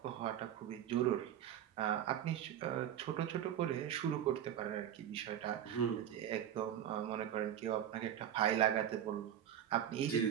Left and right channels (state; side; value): quieter; left; 10.3 dB